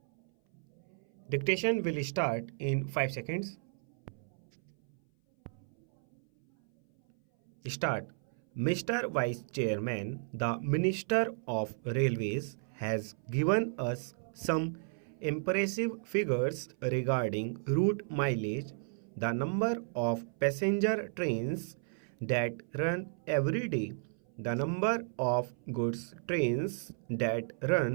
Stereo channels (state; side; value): silent; left; 55 dB below the other